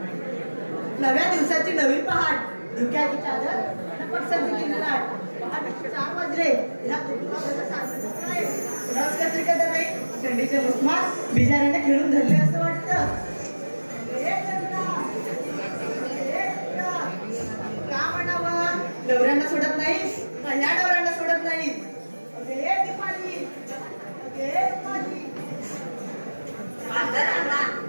दिवसाची नवी पहाट, धुक्याची चादर पटसंती लाट. पहाटे 4 वाजले. ह्या रस कसली का नाही थंडीचे उस्मात बिजाऱ्यांना खेळून धरले असं वाटतं. का म्हणावं, नवऱ्यांना सोडत नाही का ह्या नवऱ्यांना सोडत नाही.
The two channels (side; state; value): both; inverted; correlation -1.00